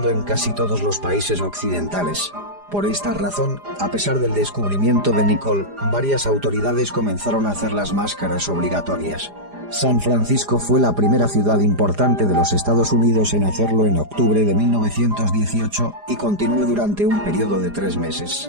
en casi todos los países occidentales. Por esta razón, a pesar del descubrimiento de Nicolle, varias autoridades comenzaron a hacer las máscaras obligatorias. San Francisco fue la primera ciudad importante de los Estados Unidos en hacerlo en octubre de 1918, y continuó durante un periodo de 3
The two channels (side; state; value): left; late; 4.9 ms